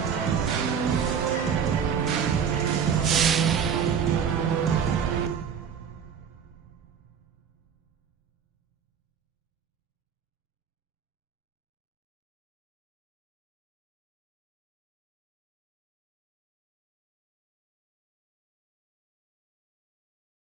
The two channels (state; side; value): quieter; left; 7.4 dB